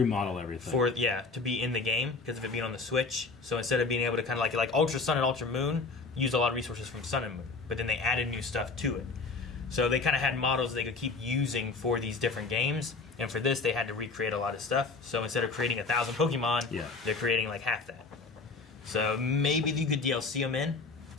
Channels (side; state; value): right; quieter; 4.2 dB